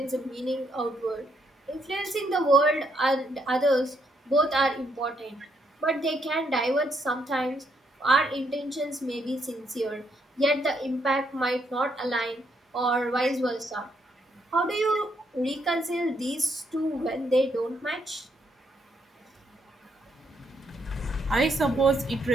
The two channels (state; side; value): normal; both; correlation 0.75